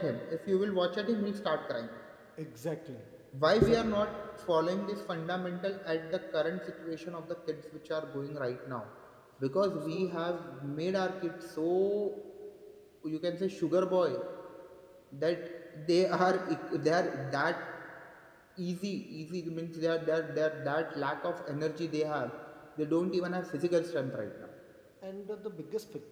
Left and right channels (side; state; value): both; identical; correlation 1.00